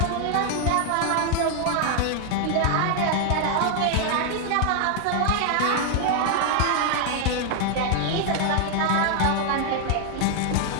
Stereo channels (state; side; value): different; both; correlation 0.00